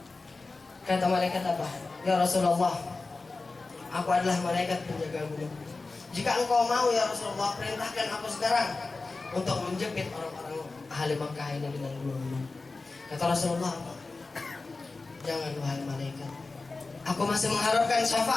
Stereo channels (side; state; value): right; quieter; 3.7 dB